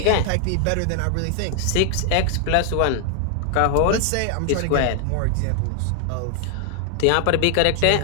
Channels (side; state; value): both; different; correlation 0.00